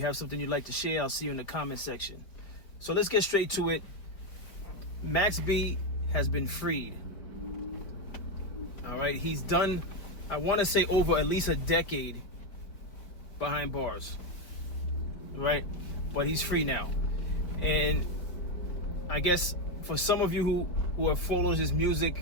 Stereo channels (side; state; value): right; late; 4.8 ms